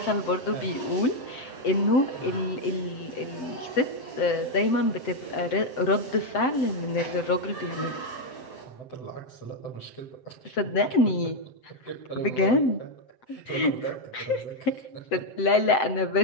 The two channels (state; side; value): late; right; 7.7 ms